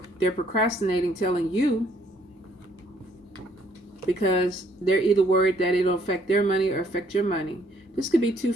procrastinating telling you because they're either worried that it'll affect their money or affect your money. This could be two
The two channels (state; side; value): normal; both; correlation 0.65